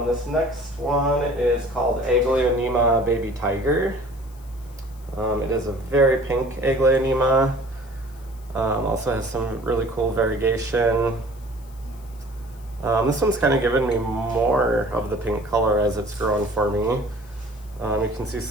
This next one is called Aglaonema Baby Tiger. It is a very pink Aglaonema. Also has some really cool variegation. This one's kind of given me more of the pink color as it's grown for me. You can see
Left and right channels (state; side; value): noise; left; hiss, 27 dB below the sound